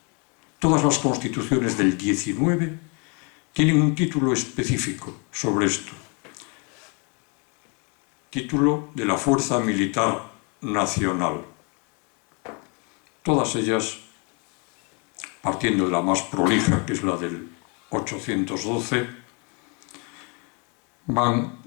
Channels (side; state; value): right; quieter; 34.0 dB